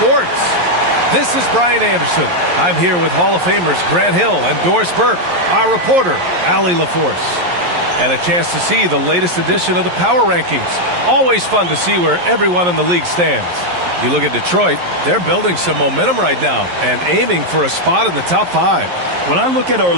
This is Brian Anderson. I'm here with Hall of Famers Grant Hill and Doris Burke, our reporter, Allie LaForce. And a chance to see the latest edition of the Power Rankings. Always fun to see where everyone in the league stands. You look at Detroit, they're building some momentum right now and aiming for a spot in the top 5. When I look at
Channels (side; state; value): left; late; 11 ms